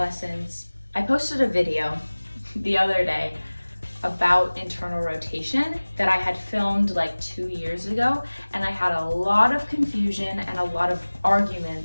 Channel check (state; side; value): inverted; both; correlation -1.00